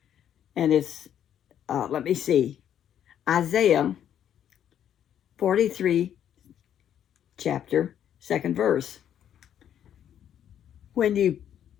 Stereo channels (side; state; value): right; quieter; 9.9 dB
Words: And it's, let me see, Isaiah 43, chapter, second verse. When you